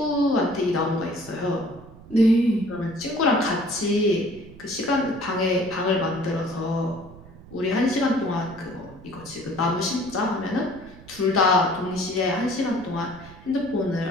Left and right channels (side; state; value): right; noise; rumble, 19 dB below the sound